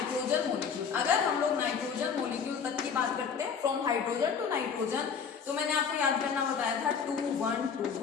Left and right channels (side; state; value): right; quieter; 6.5 dB